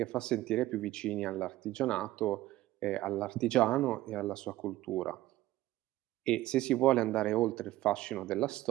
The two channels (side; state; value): left; quieter; 15.9 dB